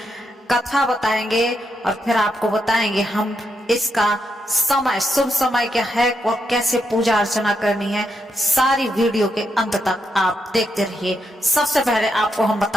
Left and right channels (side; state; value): both; normal; correlation 0.81